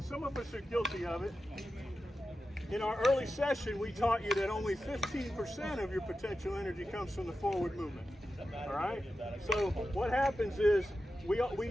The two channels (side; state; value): both; normal; correlation 0.91